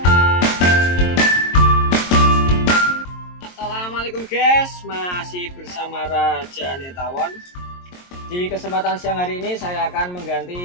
Assalamualaikum guys, masih bersama Raja Netawon. Di kesempatan siang hari ini saya akan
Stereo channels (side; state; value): right; late; 22 ms